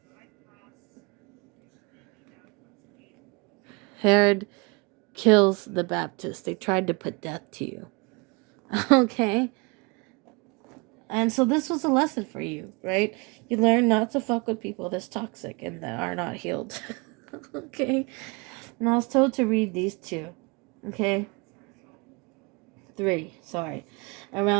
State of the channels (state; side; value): quieter; left; 29.0 dB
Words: Herod kills the Baptist. They tried to put death to you. Okay? And so this was a lesson for you, right? You learn not to fuck with people that's toxic and that are not healed. Okay? And I was told to read these two. Okay? 3, sorry.